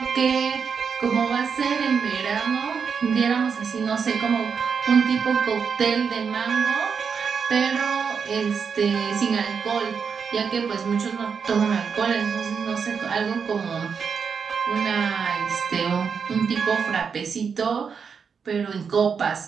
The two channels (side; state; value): left; quieter; 6.2 dB